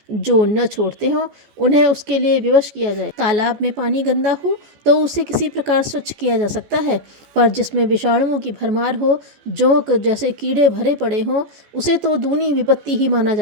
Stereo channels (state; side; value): late; left; 14 ms